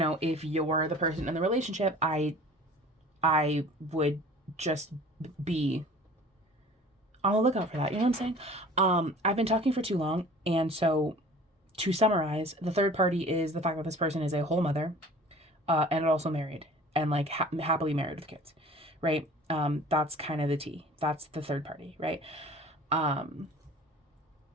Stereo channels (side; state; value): both; normal; correlation 0.45